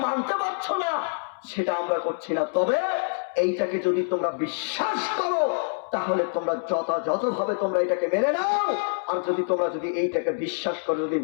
মানতে পারছো না, সেটা আমরা করছি না। তবে এইটাকে যদি তোমরা বিশ্বাস করো, তাহলে তোমরা যথাযথভাবে তোমরা এটাকে মেনে নাও। আর তোমরা যদি এইটাকে বিশ্বাস করো, যদি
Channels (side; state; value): right; silent; 61 dB below the other